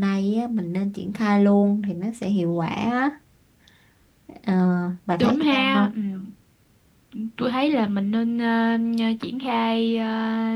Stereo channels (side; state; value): both; identical; correlation 1.00